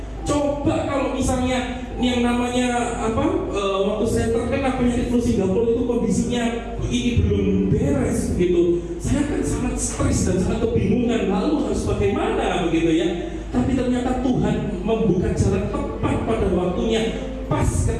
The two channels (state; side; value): identical; both; correlation 1.00